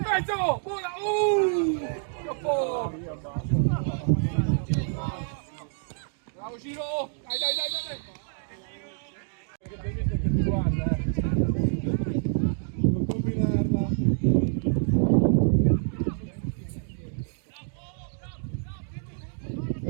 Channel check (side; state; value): left; silent; 60 dB below the other